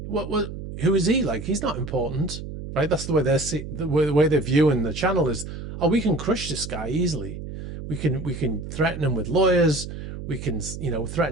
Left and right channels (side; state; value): right; noise; hum, 9 dB below the sound